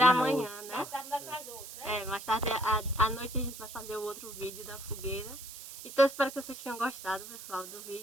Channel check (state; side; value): noise; right; hiss, 12 dB below the sound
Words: amanhã, né? Mais tarde à noite a gente vai fazer o outro vídeo da fogueira. Então espero que vocês tenham gostado, pessoal, do